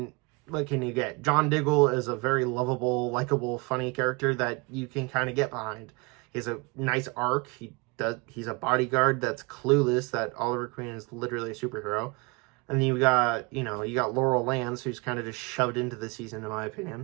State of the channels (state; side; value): quieter; left; 27.8 dB